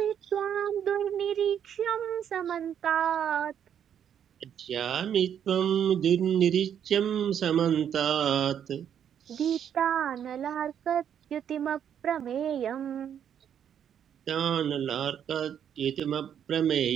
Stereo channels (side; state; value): left; quieter; 9.0 dB